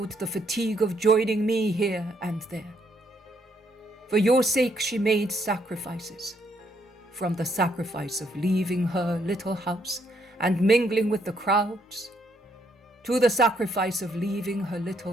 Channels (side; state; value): both; normal; correlation 0.72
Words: the fatigue of joining me here and there. For your sake, she made sacrifices, from the sacrifice of leaving her little house and mingling with the crowds, to the sacrifice of leaving her